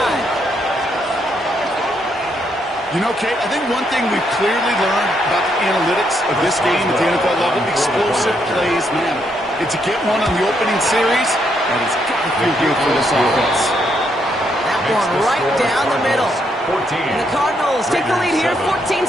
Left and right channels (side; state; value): both; normal; correlation 0.76